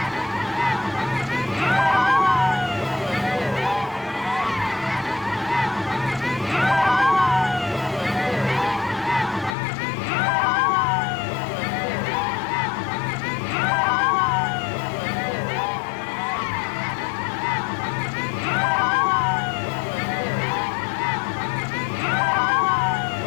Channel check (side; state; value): right; drops out; at 9.6 s